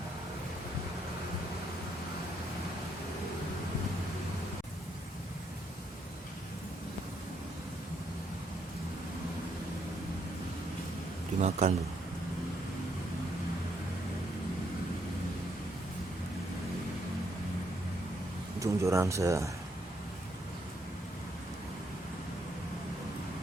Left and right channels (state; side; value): normal; both; correlation 0.74